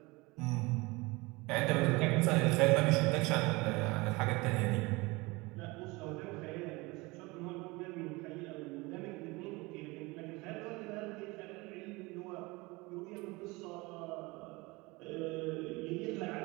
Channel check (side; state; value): left; quieter; 23.9 dB